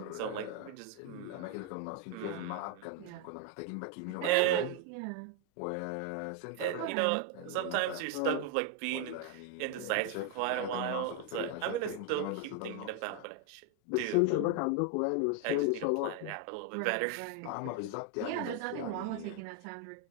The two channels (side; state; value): both; different; correlation 0.00